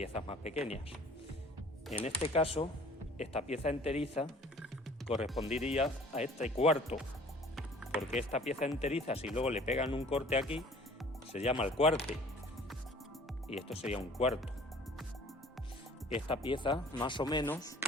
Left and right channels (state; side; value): normal; both; correlation 0.50